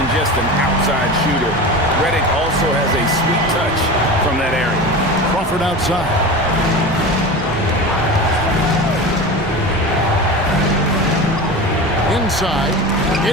just an outside shooter. Redick also has a sweet touch from that area. Crawford outside. Inside.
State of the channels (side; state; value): both; normal; correlation 0.29